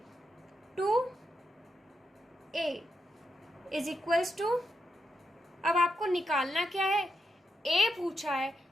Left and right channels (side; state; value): both; normal; correlation 0.84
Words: इज इक्वल्स टू, अब आपको निकालना क्या है, a पूछा है